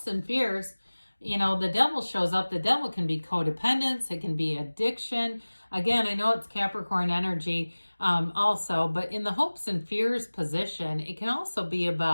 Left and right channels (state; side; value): inverted; both; correlation -1.00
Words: and fears, you know, the devil shows up. The devil can be codependence. It can be addiction. Again, I know it's Capricorn energy also, but in the hopes and fears position, it can also be